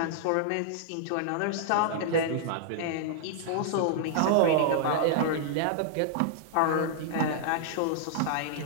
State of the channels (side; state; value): both; different; correlation -0.01